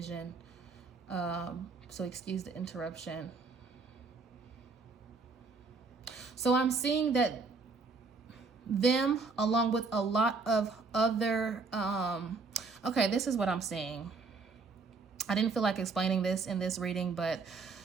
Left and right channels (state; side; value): quieter; left; 4.3 dB